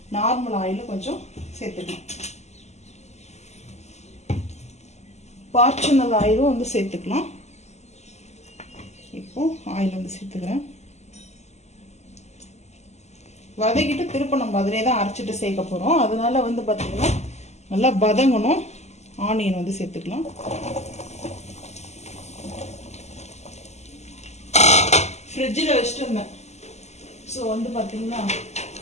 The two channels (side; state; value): right; late; 0.33 ms